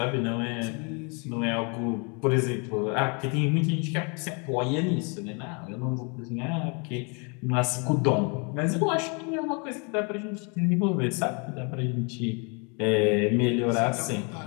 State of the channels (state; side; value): quieter; right; 34.3 dB